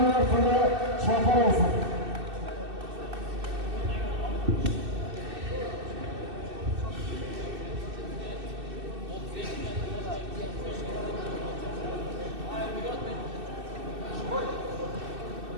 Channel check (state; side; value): late; left; 2.6 ms